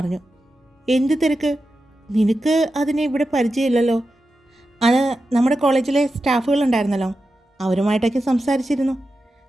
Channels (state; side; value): normal; both; correlation 0.91